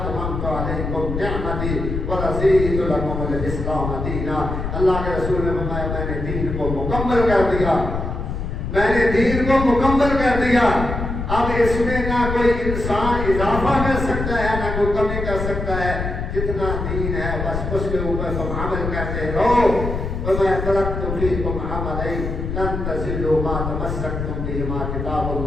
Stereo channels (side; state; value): left; noise; rumble, 4 dB below the sound